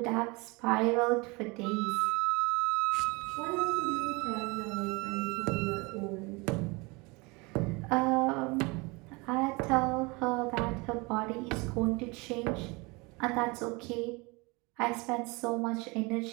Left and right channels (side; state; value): left; quieter; 26.6 dB